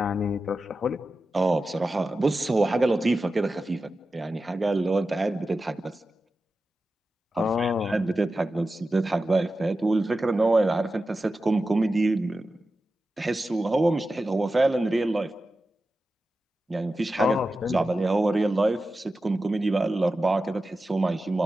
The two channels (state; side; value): normal; both; correlation 0.93